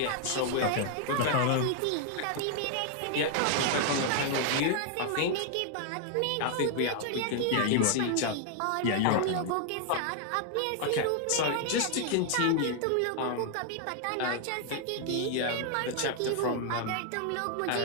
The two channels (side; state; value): both; different; correlation 0.00